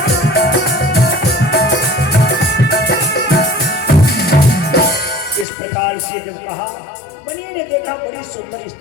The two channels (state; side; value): drops out; right; at 5.5 s